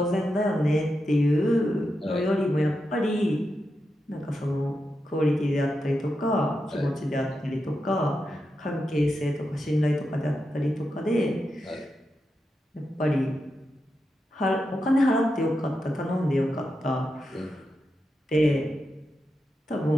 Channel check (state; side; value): normal; both; correlation 0.87